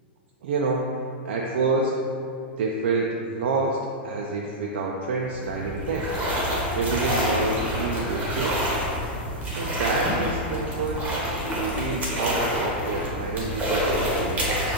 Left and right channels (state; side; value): normal; both; correlation -0.08